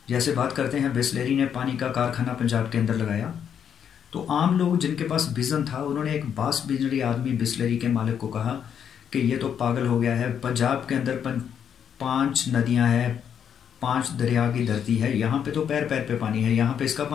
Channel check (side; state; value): right; quieter; 8.3 dB